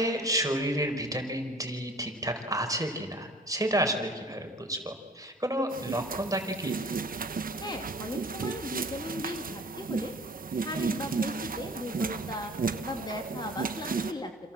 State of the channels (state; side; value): normal; both; correlation 0.47